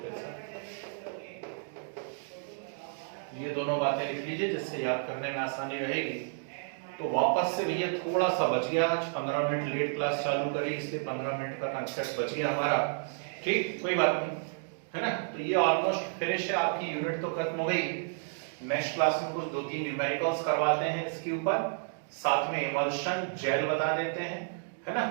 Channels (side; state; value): left; silent; digital silence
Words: ये दोनों बातें लिख लीजिए जिससे याद करने में आसानी रहेगी। तो वापस से भैया थोड़ा सा बच गया, आज 15 मिनट लेट क्लास चालू करी, इसलिए 15 मिनट का कंसेप्ट बच गया हमारा, ठीक, कोई बात नहीं, है ना। तो ये ऑलमोस्ट फिनिश है, आपकी यूनिट तो खत्म हो गई। नेक्स्ट क्लास में कुछ 2-3 न्यूमेरिकल्स करवाते हैं इसके ऊपर, साथ में इमल्शन जेल बता देते हैं, है ना,